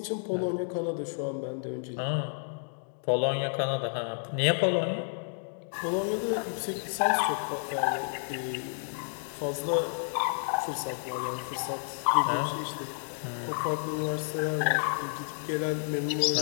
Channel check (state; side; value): silent; right; digital silence